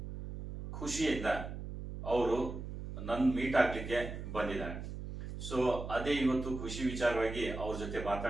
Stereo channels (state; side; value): noise; right; hum, 8 dB below the sound